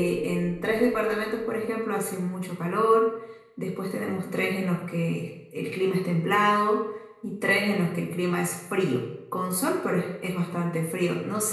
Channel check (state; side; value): identical; both; correlation 1.00